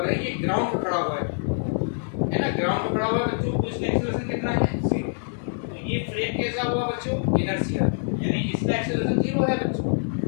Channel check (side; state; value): right; silent; digital silence